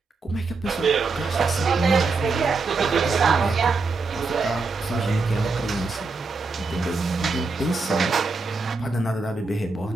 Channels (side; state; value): left; quieter; 4.0 dB